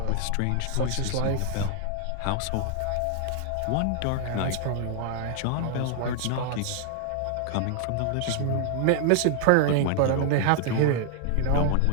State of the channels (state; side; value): different; both; correlation 0.00